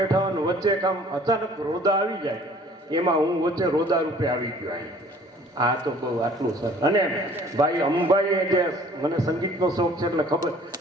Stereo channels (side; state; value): both; normal; correlation 0.53